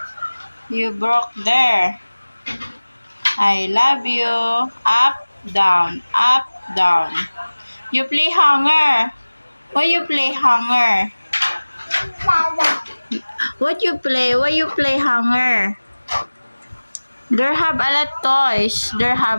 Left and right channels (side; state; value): both; inverted; correlation -1.00